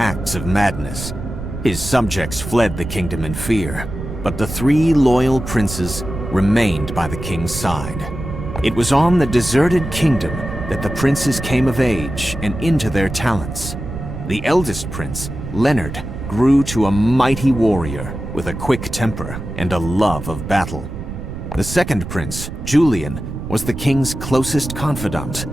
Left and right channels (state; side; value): noise; right; rumble, 8 dB below the sound